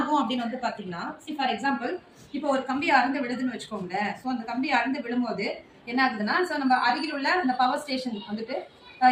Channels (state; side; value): identical; both; correlation 1.00